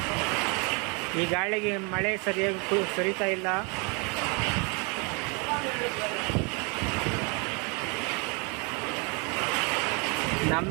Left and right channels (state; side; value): quieter; left; 32.5 dB